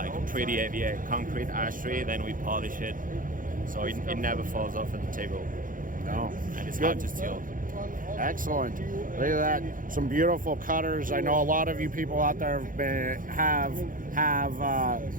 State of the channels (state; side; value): late; left; 0.40 ms